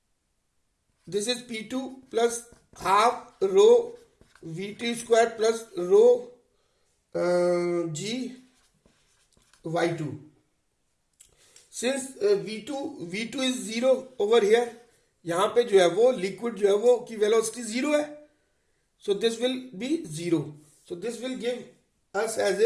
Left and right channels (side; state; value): both; identical; correlation 1.00